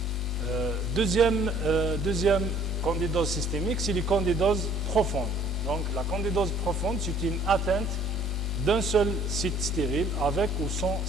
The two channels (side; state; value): both; normal; correlation 0.58